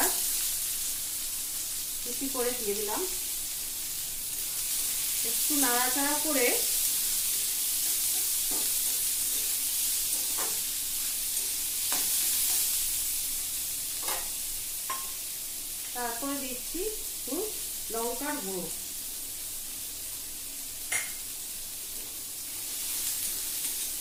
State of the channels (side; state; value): both; identical; correlation 1.00